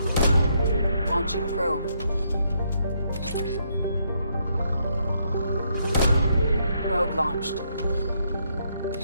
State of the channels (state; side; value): inverted; both; correlation -0.74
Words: Launching probe. Probe launched.